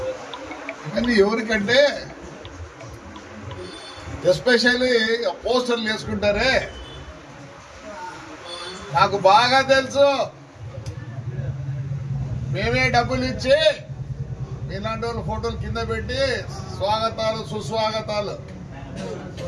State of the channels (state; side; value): identical; both; correlation 1.00